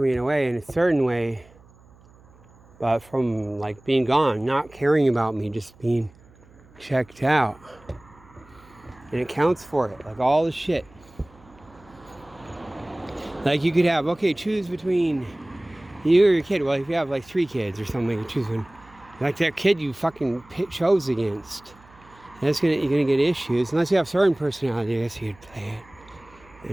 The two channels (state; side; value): noise; right; hum, 26 dB below the sound